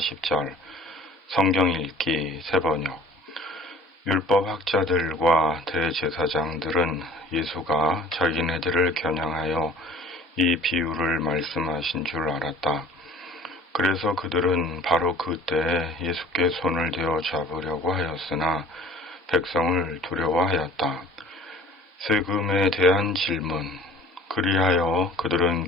성경 읽기 세번역. 율법학자들과 대제사장들은 예수가 자기네들을 겨냥하여 이 비유를 말씀하신 줄 알았다. 그래서 그들은 바로 그때 예수께 손을 대어 잡으려고 하였으나 백성을 두려워하였다. 세금에 대한 질문. 그리하여 그들은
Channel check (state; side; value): normal; both; correlation 0.48